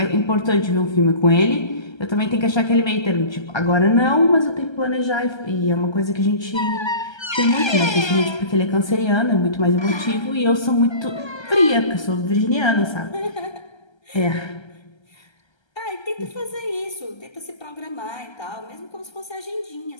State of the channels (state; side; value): late; right; 1.3 ms